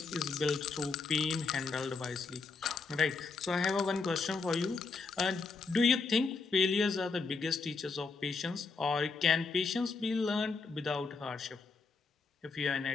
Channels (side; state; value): right; quieter; 4.4 dB